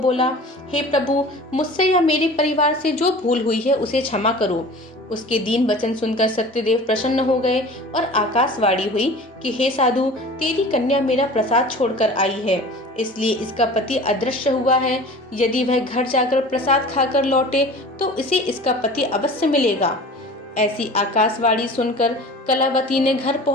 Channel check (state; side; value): normal; both; correlation 0.40